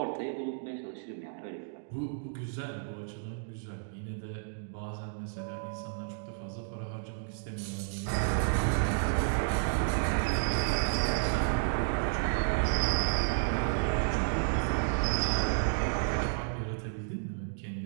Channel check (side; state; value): left; silent; digital silence